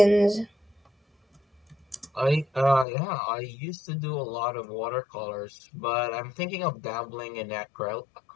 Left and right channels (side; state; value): right; drops out; at 2.9 s